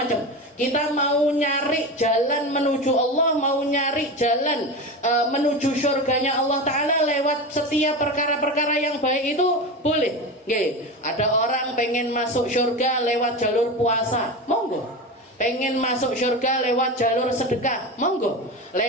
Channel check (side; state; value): both; normal; correlation 0.24